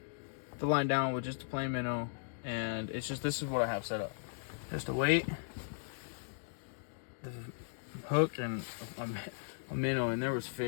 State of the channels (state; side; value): silent; right; digital silence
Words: the line down with just a plain minnow, and it's just, this is what I have set up. Just a weight, the hook, and a minnow, and there was